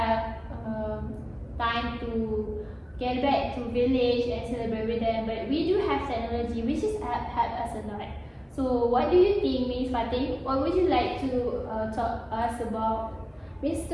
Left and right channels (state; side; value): identical; both; correlation 1.00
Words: time to get back to village and celebrate with them, but we do have technology which is help us a lot. So what do you think, Ms. Fatih? What would you like to talk us about